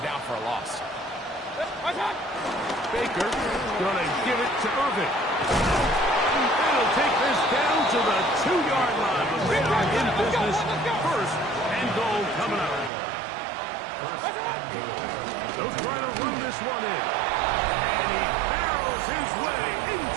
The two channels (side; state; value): left; drops out; at 12.9 s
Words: down for a loss. Baker gonna give it to Irving. They'll take this down to the 2-yard line. But they are in business. First and goal coming up. They'll try to run this one in. And he barrels his way